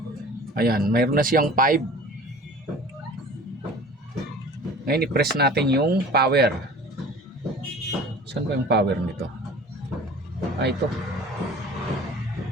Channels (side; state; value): both; normal; correlation 0.43